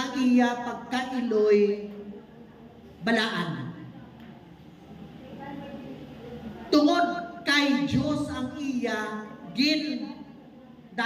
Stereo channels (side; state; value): both; identical; correlation 1.00